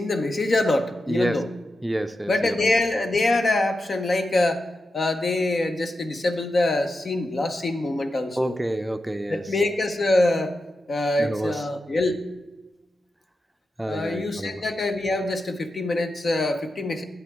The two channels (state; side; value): normal; both; correlation 0.89